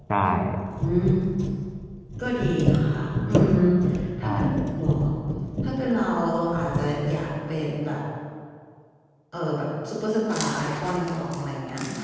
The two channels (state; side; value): identical; both; correlation 1.00